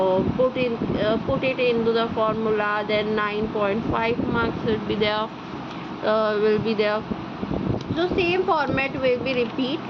put it into the formula, then 9.5 marks will be there. So same format will be repeat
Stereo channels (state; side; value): identical; both; correlation 1.00